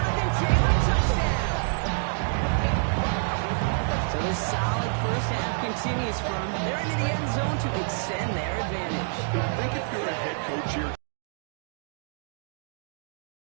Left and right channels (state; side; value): silent; left; digital silence